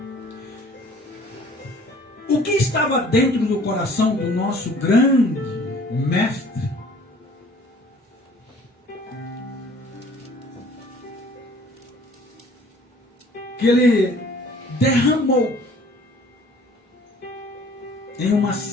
O que estava dentro do coração do nosso grande mestre? Que ele derramou em uma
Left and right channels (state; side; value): normal; both; correlation 0.53